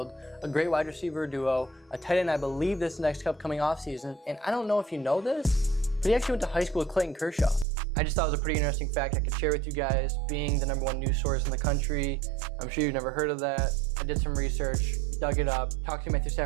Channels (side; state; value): left; drops out; at 7.7 s